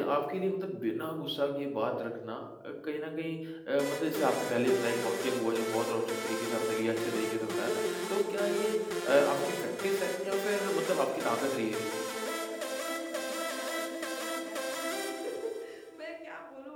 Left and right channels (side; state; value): both; identical; correlation 1.00